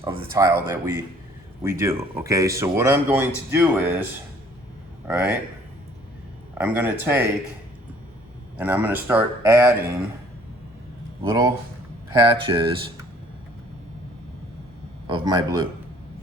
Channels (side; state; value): both; normal; correlation 0.58